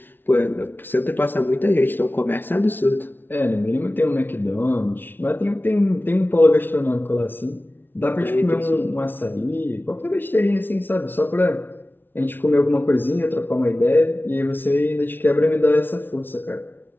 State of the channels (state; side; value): late; right; 0.098 ms